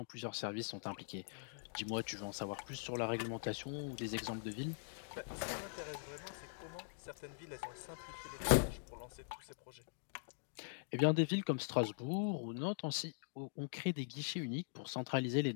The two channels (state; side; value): silent; right; digital silence